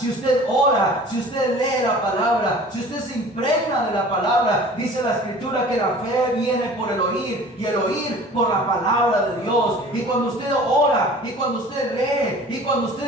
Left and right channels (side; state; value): both; normal; correlation 0.44